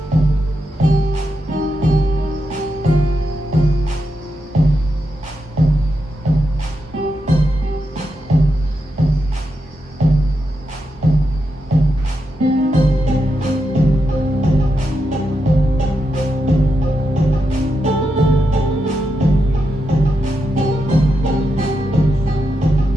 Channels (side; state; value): both; normal; correlation 0.85